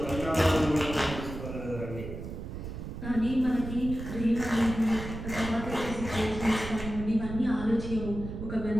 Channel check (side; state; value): right; noise; rumble, 8 dB below the sound